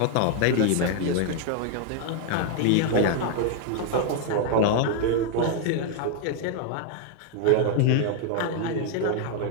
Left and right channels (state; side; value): different; both; correlation 0.00